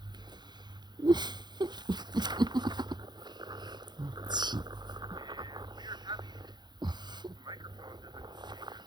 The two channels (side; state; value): left; late; 0.21 ms